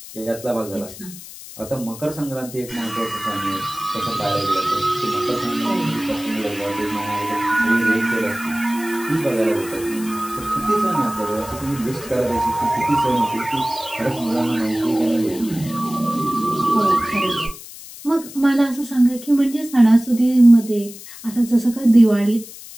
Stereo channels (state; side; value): noise; left; hiss, 15 dB below the sound